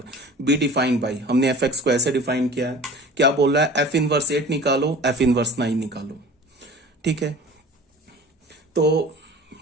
be defined by, हमने एफ एक्स को ऐसे डिफाइन किया है। क्या बोल रहा है, एफ इनवर्स 8 निकालो, एफ इनवर्स 9 निकालो। ठीक है, तो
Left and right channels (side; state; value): both; normal; correlation 0.42